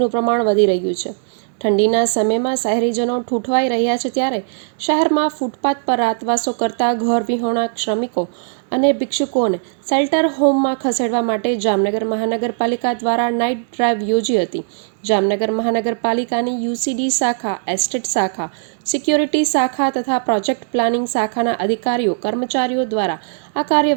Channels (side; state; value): left; silent; digital silence